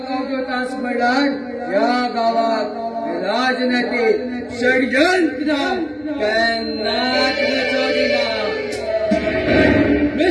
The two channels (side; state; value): both; identical; correlation 1.00